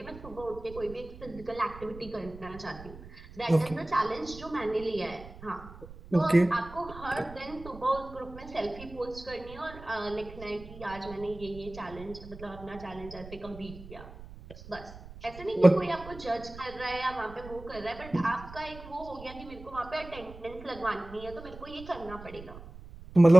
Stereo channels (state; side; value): noise; right; rumble, 16 dB below the sound